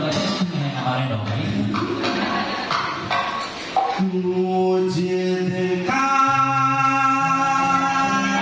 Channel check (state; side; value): identical; both; correlation 1.00